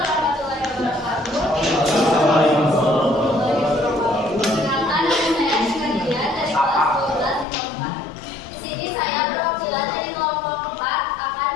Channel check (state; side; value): drops out; right; at 7.5 s